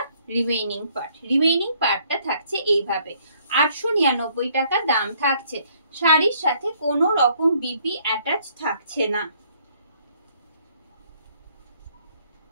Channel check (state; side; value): inverted; both; correlation -0.64